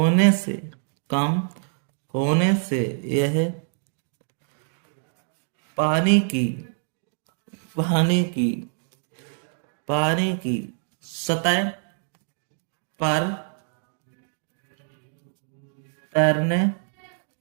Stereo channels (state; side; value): silent; left; 59 dB below the other